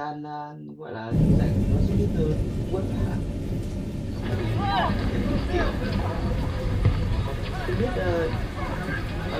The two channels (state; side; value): identical; both; correlation 1.00